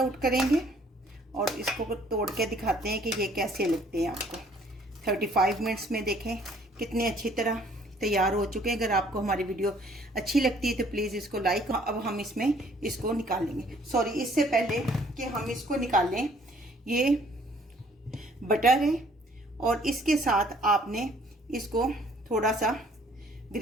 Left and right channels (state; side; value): normal; both; correlation 0.60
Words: करेंगे और इसको तोड़ के दिखाते हैं कि ये कैसे लगते हैं आपको। 35 मिनट्स में देखें कितने अच्छी तरह तैयार हो चुके हैं। अगर आपको हमारी वीडियो अच्छी लगती है तो प्लीज़ इसको लाइक। अब हम इसमें इसको निकालेंगे। सॉरी, इससे पहले कि हम इसको निकालें, ये बटर है और इसके साथ आपने इसको थोड़ा सा